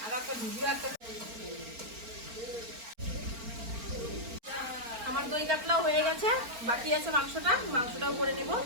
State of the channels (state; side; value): late; left; 4.4 ms